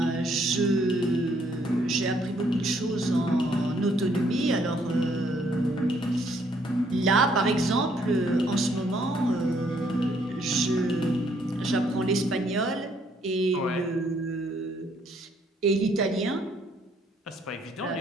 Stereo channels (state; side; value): normal; both; correlation 0.67